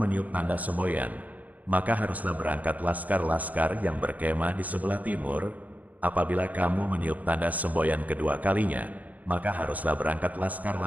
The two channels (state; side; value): late; left; 0.077 ms